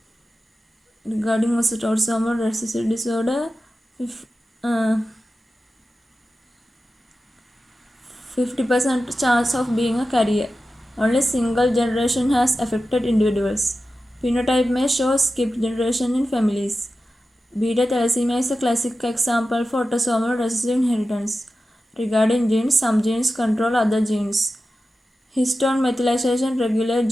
Regarding autosomal recessive disorder, 50% chance of being a carrier. Only single generation has affected individuals. Phenotype may show skipped generation in families. Beta thalassemia is a classic example for autosomal recessive inheritance. Regarding genes, some genes control other genes. Histone methylation regulates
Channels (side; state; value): both; normal; correlation 0.93